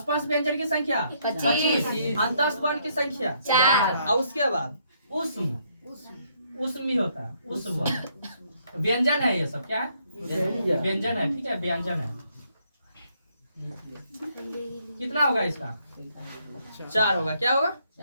व्यंजन की संख्या 25। अंतस्थ वर्ण की संख्या 4। और उसके बाद उष्म भी होता है। उष्म व्यंजन है। ये सब क्या है? व्यंजन है। ठीक है, व्यंजन है। कितना होगा इसका? 4 होगा। क्या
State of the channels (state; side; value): inverted; both; correlation -0.71